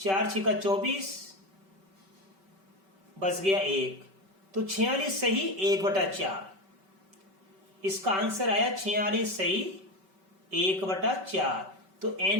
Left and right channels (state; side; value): late; left; 5.2 ms